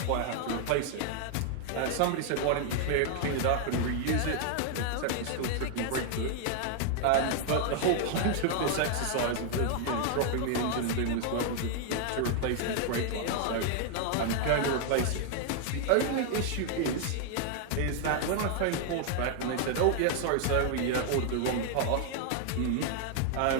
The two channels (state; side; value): different; both; correlation 0.00